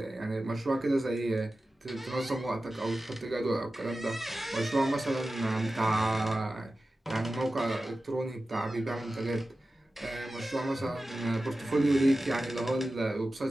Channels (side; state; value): both; normal; correlation 0.94